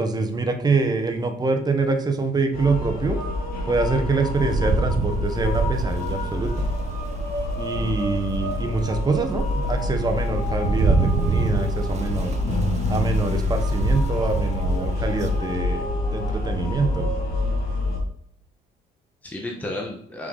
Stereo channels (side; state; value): both; normal; correlation 0.69